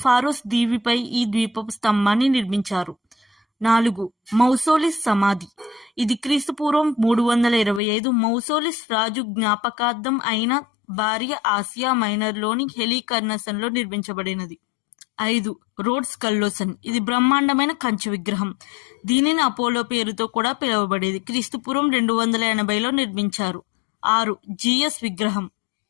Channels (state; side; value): drops out; right; at 7.8 s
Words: ఫారోస్ దీవిపై ఈ ద్వీపపు స్తంభాన్ని నిర్మించారు. 4. మౌసోలిస్ సమాధి. ఇది క్రీస్తుపూర్వం 325 మౌసోలిస్ రాజు జ్ఞాపకార్థం అయిన భార్య ఆసియా మైనర్లోని హెలికర్నసన్లో నిర్మించబడినది. 5. రోడ్స్ కల్లోసన్. ఇది బ్రహ్మాండమైన కంచు విగ్రహం. దీనిని అపోలో పేరుతో కూడా పిలువబడేది. క్రీస్తుపూర్వం 280లో నిర్మించారు. 6. జియస్ విగ్రహం.